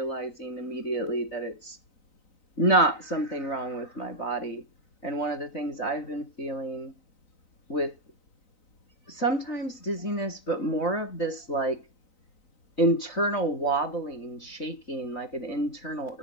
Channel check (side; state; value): right; late; 3.9 ms